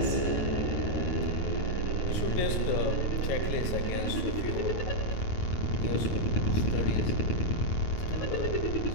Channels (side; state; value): right; late; 9.5 ms